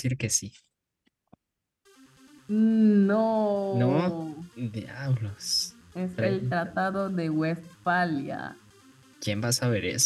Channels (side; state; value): both; identical; correlation 1.00